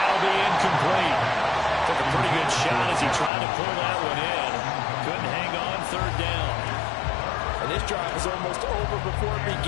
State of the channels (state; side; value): drops out; right; at 3.3 s